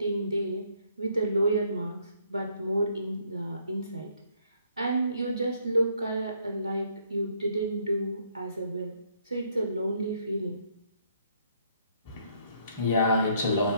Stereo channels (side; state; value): both; inverted; correlation -0.68